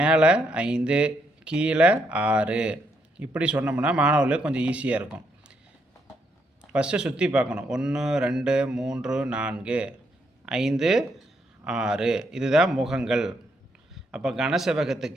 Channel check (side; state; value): both; normal; correlation 0.76